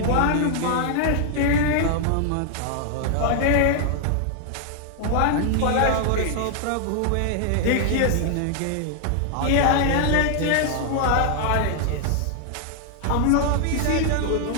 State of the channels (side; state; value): both; different; correlation 0.00